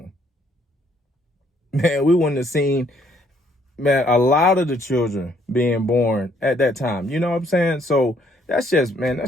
Man, we wouldn't have seen, man, a lot of the children being born at that time. You know what I'm saying? So that's just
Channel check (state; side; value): normal; both; correlation 0.67